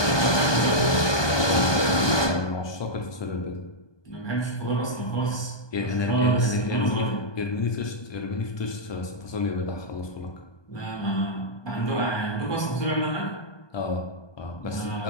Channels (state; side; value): late; right; 1.2 ms